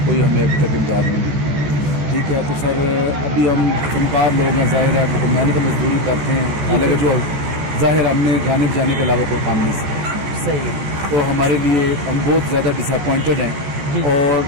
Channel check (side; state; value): left; late; 14 ms